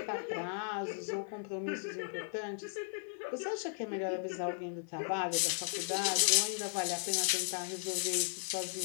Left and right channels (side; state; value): right; silent; 54 dB below the other